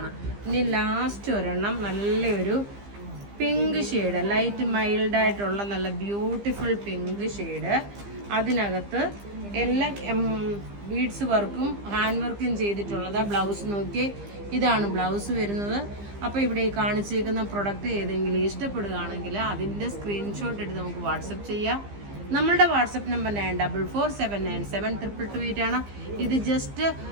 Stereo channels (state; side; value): late; left; 15 ms